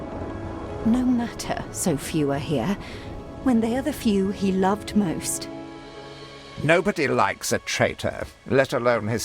No matter, so few are here, when they are the few he loved most. Nobody likes a traitor, let alone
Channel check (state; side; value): identical; both; correlation 1.00